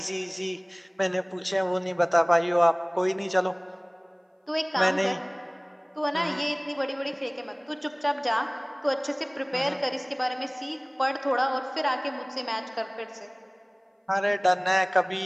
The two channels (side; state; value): both; identical; correlation 1.00